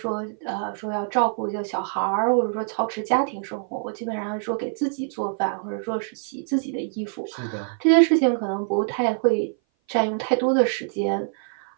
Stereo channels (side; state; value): left; silent; 57 dB below the other